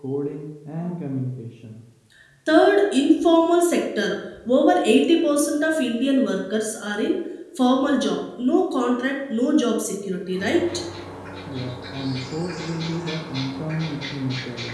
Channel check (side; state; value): both; identical; correlation 1.00